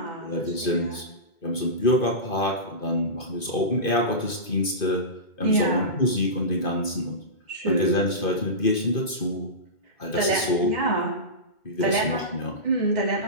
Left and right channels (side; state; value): right; late; 2.5 ms